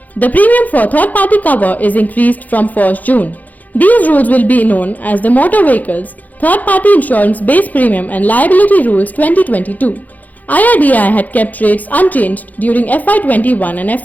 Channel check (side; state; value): right; late; 0.080 ms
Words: The premium for third-party cover is increased from 1st June. These rules will be known as the Motor Vehicles Third-Party Insurance Base Premium and Liability Rules 2022. IRDAI had kept rates unchanged during FY21 and